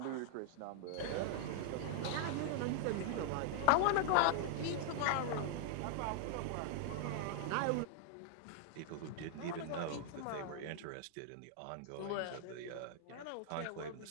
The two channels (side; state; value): both; different; correlation -0.01